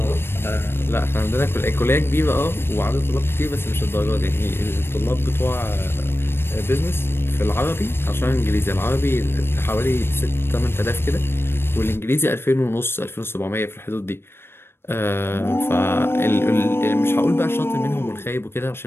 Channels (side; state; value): right; late; 0.11 ms